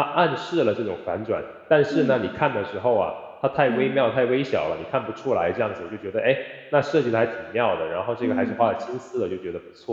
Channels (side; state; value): both; identical; correlation 1.00